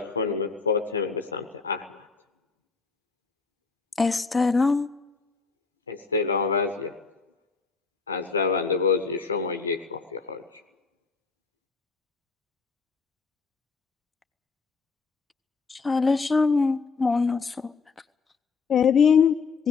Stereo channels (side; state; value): right; quieter; 4.9 dB